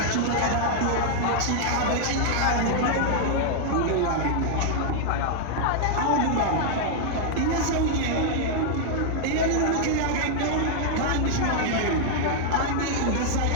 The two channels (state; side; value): different; both; correlation -0.01